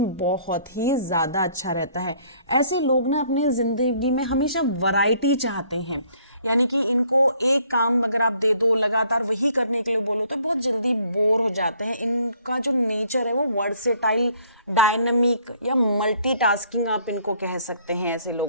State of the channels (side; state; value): both; inverted; correlation -0.62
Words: बहुत ही ज़्यादा अच्छा रहता है। ऐसे लोग ना अपने ज़िंदगी में हमेशा वैरायटी चाहते हैं, यानी कि इनको एक काम अगर आप दे दो लगातार वही करने के लिए बोलो तो बहुत जल्दी बोर हो जाते हैं। इनका जो नेचर है वो वर्सेटाइल, डायनामिक या मल्टीटास्किंग आप इनको कह सकते हैं ऐसे